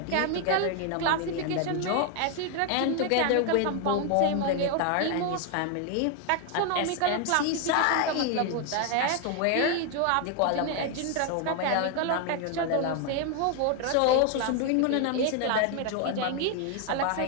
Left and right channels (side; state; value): both; different; correlation 0.01